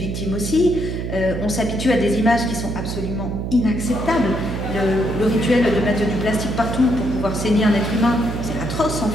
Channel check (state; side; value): noise; right; hum, 4 dB below the sound